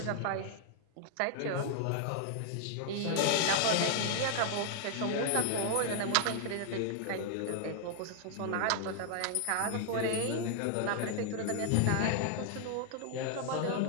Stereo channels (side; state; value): both; different; correlation 0.00